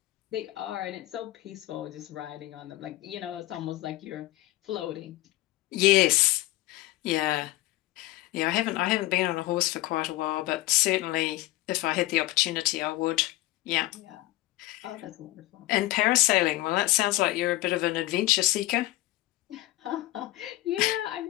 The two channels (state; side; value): quieter; right; 17.5 dB